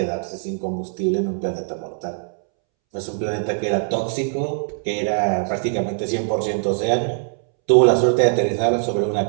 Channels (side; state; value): left; silent; 64 dB below the other